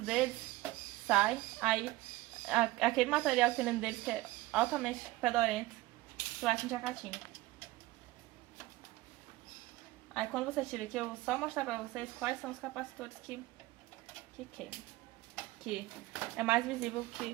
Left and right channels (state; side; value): quieter; left; 18.4 dB